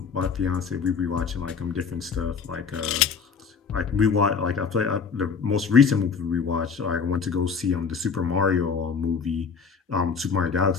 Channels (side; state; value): right; quieter; 5.8 dB